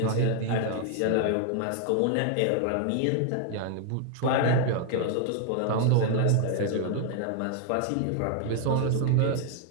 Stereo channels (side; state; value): both; different; correlation 0.00